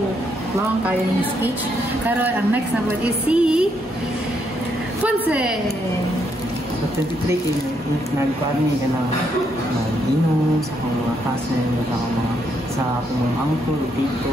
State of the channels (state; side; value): normal; both; correlation 0.75